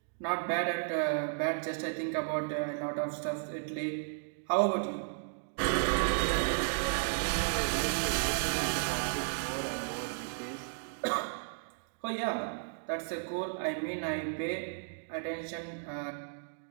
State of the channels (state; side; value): silent; left; digital silence